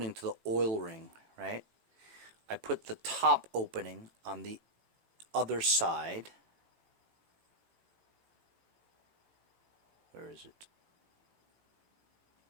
to the oil ring, right? I put the top opening on the other side. Where is it?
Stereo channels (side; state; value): left; late; 18 ms